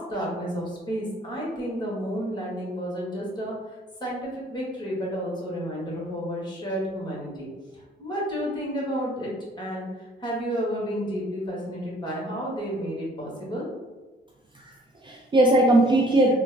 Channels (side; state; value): both; normal; correlation 0.57